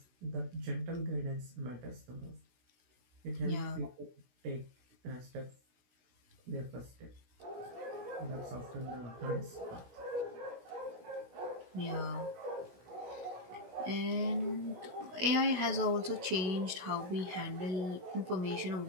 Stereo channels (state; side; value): late; left; 16 ms